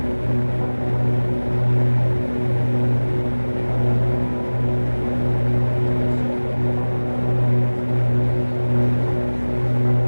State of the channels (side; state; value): both; inverted; correlation -1.00